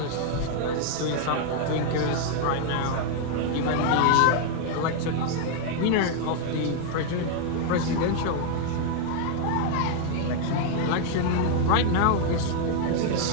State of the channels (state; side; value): different; both; correlation 0.00